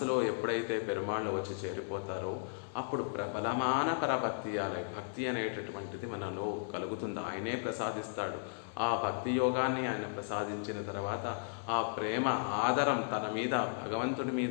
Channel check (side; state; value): right; silent; 54 dB below the other